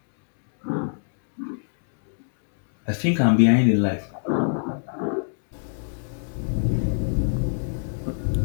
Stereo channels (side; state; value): right; silent; digital silence